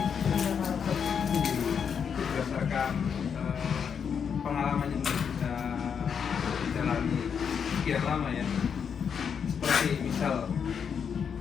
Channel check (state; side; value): quieter; right; 7.0 dB